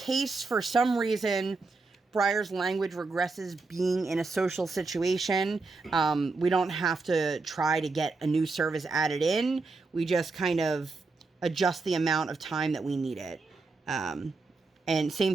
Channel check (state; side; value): quieter; left; 3.9 dB